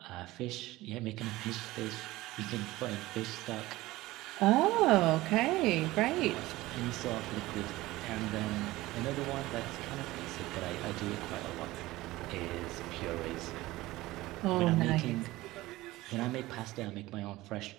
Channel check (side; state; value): left; quieter; 18.3 dB